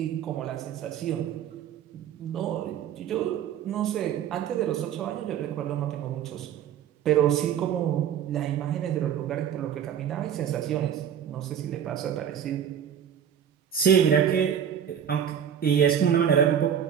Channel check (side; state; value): left; quieter; 9.0 dB